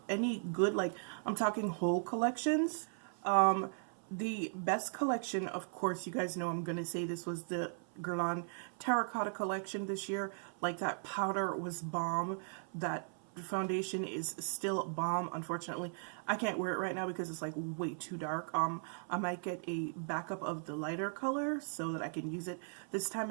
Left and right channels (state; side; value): silent; left; 53 dB below the other